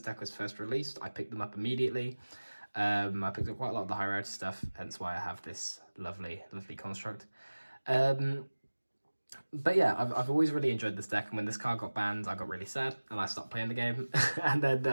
deck was first released. I picked them up immediately. I picked up quite a lot of the high rarity stuff, hence why I have this lovely construct. But yeah, I've always really enjoyed this deck, and when this card got banned, I got really sad, and I stopped playing the game. And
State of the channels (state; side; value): inverted; both; correlation -1.00